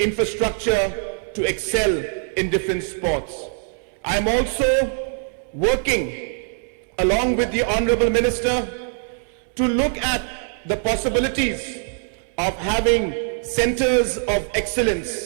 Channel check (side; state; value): left; silent; 64 dB below the other